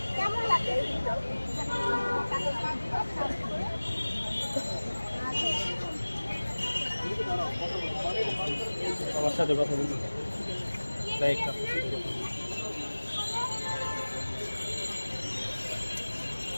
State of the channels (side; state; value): both; inverted; correlation -1.00